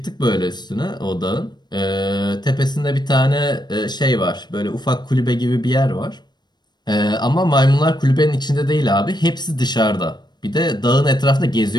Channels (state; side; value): late; right; 0.21 ms